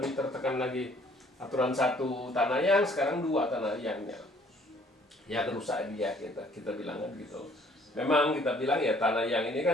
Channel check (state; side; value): normal; both; correlation 0.59